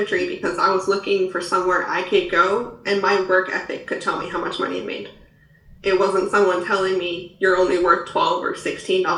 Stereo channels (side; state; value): both; identical; correlation 1.00